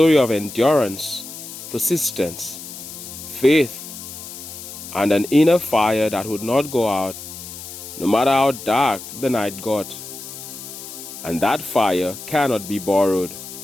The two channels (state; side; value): noise; left; hiss, 12 dB below the sound